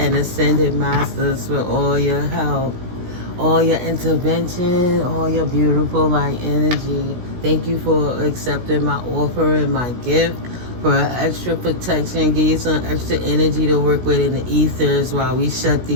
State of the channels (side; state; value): left; late; 16 ms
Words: ascended masters for all your help, all your intervention, all your beautiful light energy. Thank you for accepting my offer and my gift for extra protection. Give you some extra energy to work with in the ethers while we shut